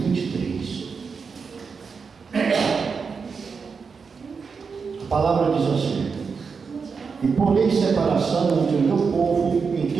23. A palavra diz assim: e porei separação entre o meu povo e o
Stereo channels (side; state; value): left; quieter; 5.4 dB